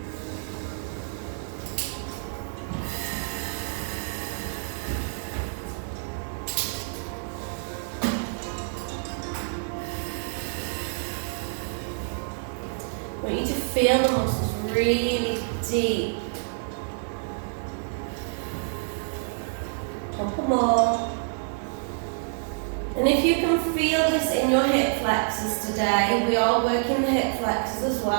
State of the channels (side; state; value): left; silent; digital silence